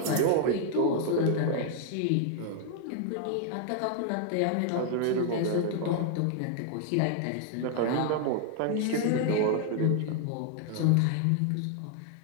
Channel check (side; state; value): both; different; correlation 0.00